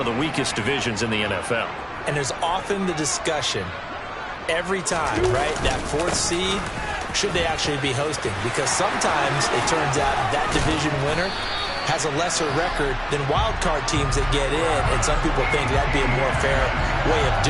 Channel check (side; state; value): both; identical; correlation 1.00